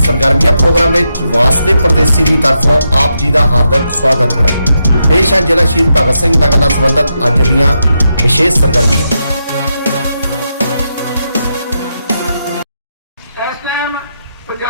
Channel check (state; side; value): inverted; both; correlation -0.84